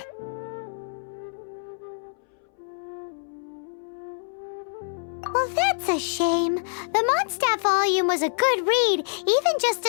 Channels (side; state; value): right; silent; 61 dB below the other